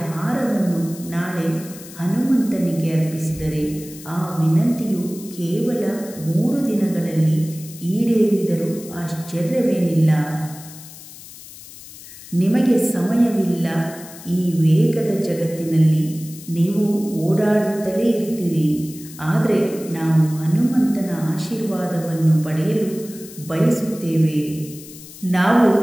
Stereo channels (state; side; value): noise; left; hiss, 17 dB below the sound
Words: ಹಾರವನ್ನು ನಾಳೆ ಹನುಮಂತನಿಗೆ ಅರ್ಪಿಸಿದರೆ ಆ ವಿನಂತಿಯು ಕೇವಲ 3 ದಿನಗಳಲ್ಲಿ ಈಡೇರಿದರೂ ಆಶ್ಚರ್ಯವೇನಿಲ್ಲ. ನಿಮಗೆ ಸಮಯವಿಲ್ಲ. ಈ ವೇಗದ ಜಗತ್ತಿನಲ್ಲಿ ನೀವು ಓಡಾಡುತ್ತಲೇ ಇರ್ತೀರಿ. ಆದರೆ ನಾವು ಹನುಮಂತನ ಆಶೀರ್ವಾದವನ್ನು ಪಡೆಯಲು ಬಯಸುತ್ತೇವೆ. ನಾವು